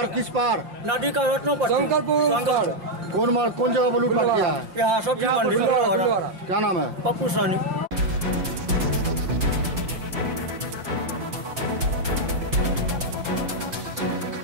किस पार? नदी का रत्नों पर शंकरपुर। कौन जगह पर लूटपाट किया है? यहाँ सब्जी मंडी। क्या नाम है? पप्पू सानी।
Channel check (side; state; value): left; late; 5.7 ms